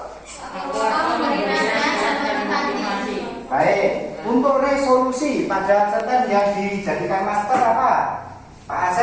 memberi nasihat dan motivasi. Baik, untuk resolusi pada cerpen yang dijadikan master apa? Pak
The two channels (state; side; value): identical; both; correlation 1.00